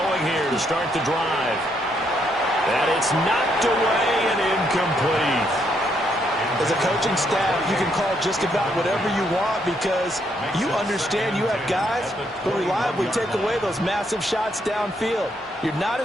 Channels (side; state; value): both; normal; correlation 0.74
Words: here to start the drive. And it's knocked away and incomplete. As a coaching staff, you can call just about whatever you want because you understand you have guys who reliably take away those massive shots downfield. You're not